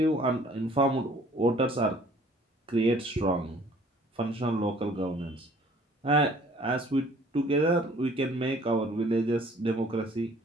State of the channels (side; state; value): both; normal; correlation 0.55